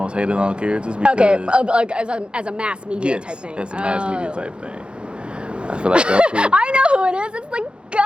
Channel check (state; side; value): late; left; 0.055 ms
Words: hated on characters because... Okay, like as a mass media type thing. Yes, as a mass media type thing. I feel like Goku... I know who it is. It's the